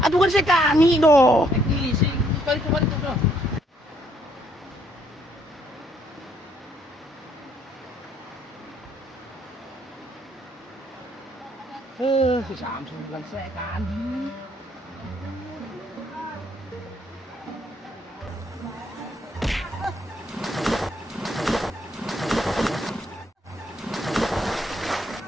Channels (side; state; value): both; normal; correlation 0.68